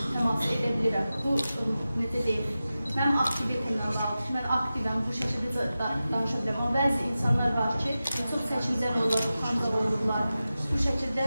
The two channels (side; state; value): both; inverted; correlation -0.94